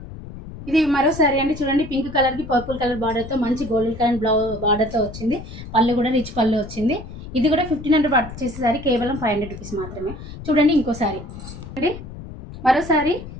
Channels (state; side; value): noise; left; rumble, 12 dB below the sound